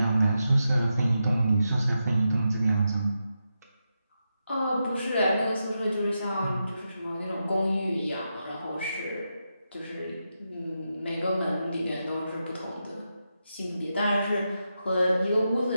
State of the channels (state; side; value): inverted; both; correlation -0.87